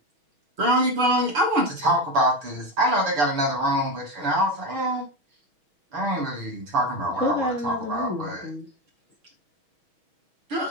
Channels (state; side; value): late; left; 6.2 ms